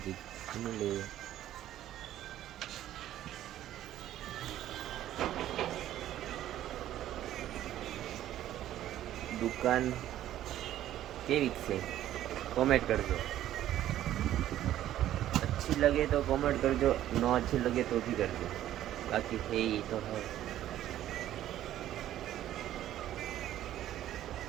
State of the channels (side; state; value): left; quieter; 12.6 dB